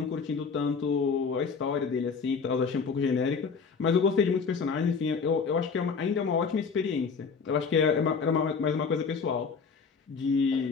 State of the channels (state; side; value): quieter; right; 5.4 dB